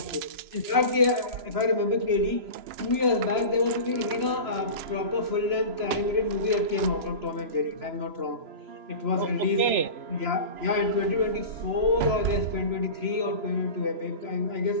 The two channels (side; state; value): left; late; 3.0 ms